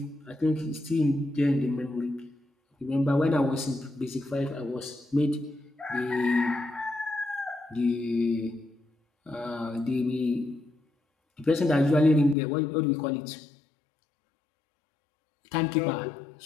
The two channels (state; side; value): drops out; right; at 12.4 s